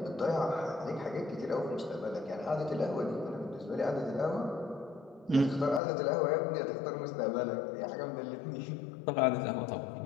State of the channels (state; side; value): drops out; right; at 5.8 s